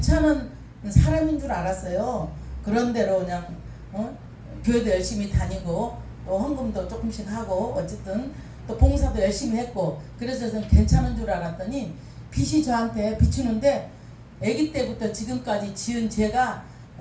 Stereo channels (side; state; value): both; identical; correlation 1.00